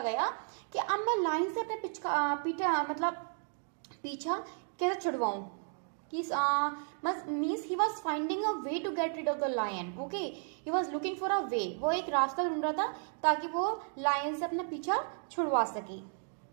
कि अब मैं लायन से अपने पीछा कैसे छुड़वाऊं. means he was finding a way to get rid of the lion. Okay, he was looking for a way. वो एक रास्ता ढूंढ रहा था ताकि वो लायन से अपना पीछा छुड़वा सके.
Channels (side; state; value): left; silent; 55 dB below the other